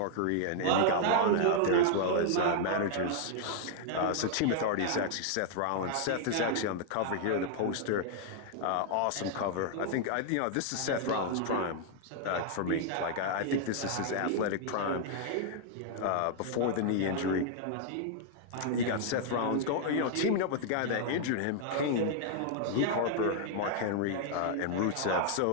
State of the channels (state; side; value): different; both; correlation -0.01